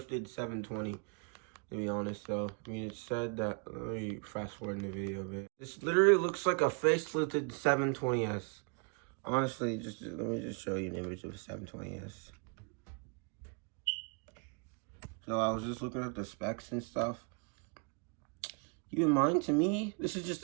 720. To be honest, though, I mean, it said that. Let me fast forward in the video a bit. This literally looks like a facelifted 720S. Honestly, let me just show you an image of a 720S. So I was just looking at the specs and stuff. Keep in mind, to me, this is just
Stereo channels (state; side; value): quieter; left; 36.5 dB